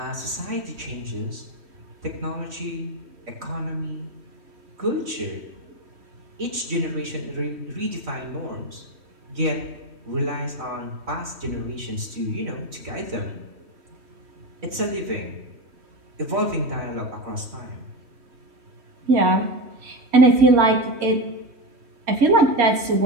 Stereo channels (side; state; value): left; late; 3.1 ms